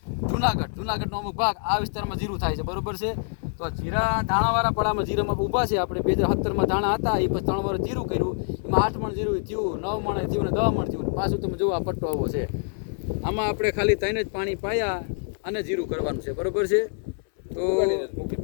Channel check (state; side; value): silent; right; 61 dB below the other